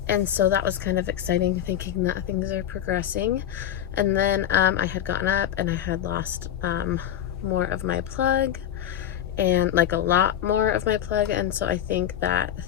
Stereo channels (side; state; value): right; quieter; 10.8 dB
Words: And so that was kind of exciting, thinking that things are progressing. And then I had gotten up and I had lost more of my plug, and like a lot more of my plug. And so I think that